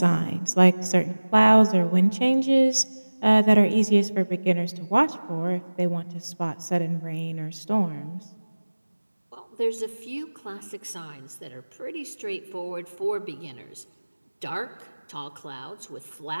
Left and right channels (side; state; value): both; inverted; correlation -1.00